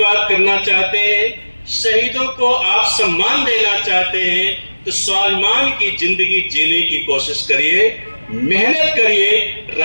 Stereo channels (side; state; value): both; inverted; correlation -1.00